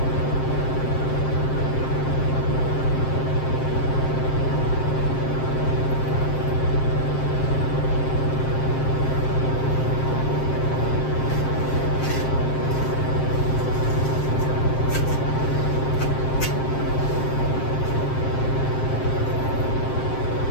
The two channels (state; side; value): late; right; 7.6 ms